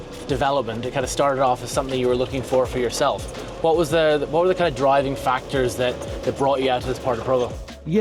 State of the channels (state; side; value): identical; both; correlation 1.00